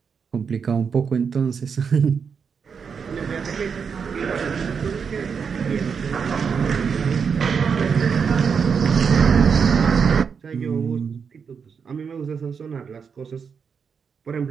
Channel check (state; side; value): quieter; left; 6.3 dB